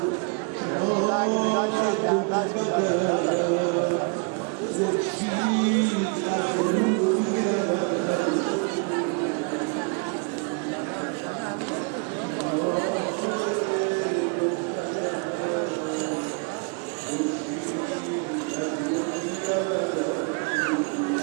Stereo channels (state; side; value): quieter; left; 37.2 dB